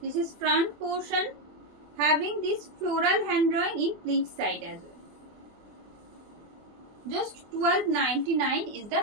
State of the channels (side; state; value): left; late; 24 ms